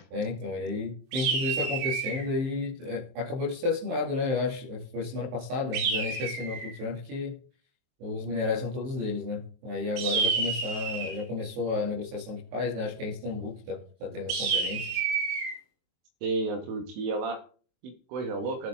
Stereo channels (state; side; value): late; left; 23 ms